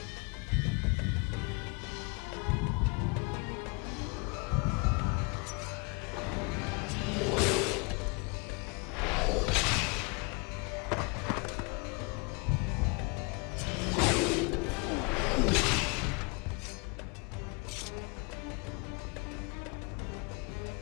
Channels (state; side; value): quieter; right; 31.3 dB